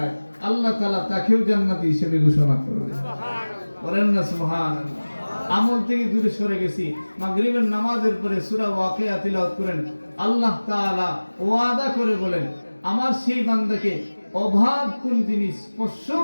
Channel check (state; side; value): inverted; both; correlation -1.00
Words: আল্লাহ তাআলা তাকেও জান্নাতি হিসেবে ঘোষণা করবেন। সুবহানাল্লাহ। বলেন না সুবহানাল্লাহ। আমল থেকে দূরে সরে গেছি, মাগরিবের নামাজের পরে সূরা ওয়াকিয়া তিলাওয়াত করেন, আল্লাহ তাআলা ওয়াদা করে বলেন আমার সেই বান্দাকে অভাব কোন জিনিস স্পর্শ